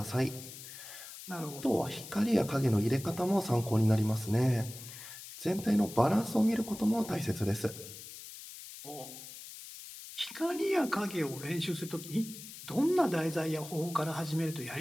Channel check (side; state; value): left; noise; hiss, 13 dB below the sound